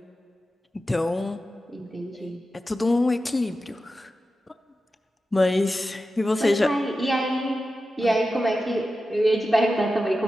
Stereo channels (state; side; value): normal; both; correlation 0.92